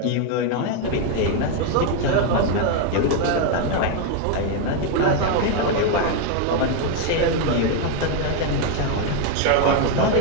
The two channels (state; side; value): different; both; correlation 0.01